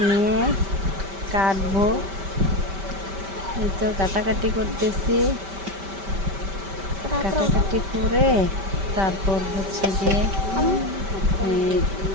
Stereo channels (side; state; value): left; late; 5.1 ms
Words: নিয়ে কাটবো। এই তো কাটাকাটি করতেছি, কাটাকাটি করে তারপর হচ্ছে গিয়ে